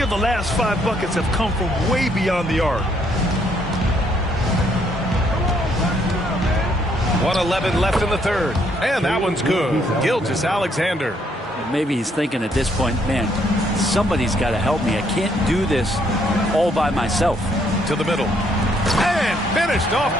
the last 5 buckets have come from way beyond the arc. 1:11 left in the third. And that one's good. Gilgeous-Alexander. Maybe he's thinking at this point, man, somebody's got to help me. I can't do this all by myself. To the middle. And finished off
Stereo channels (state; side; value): normal; both; correlation 0.70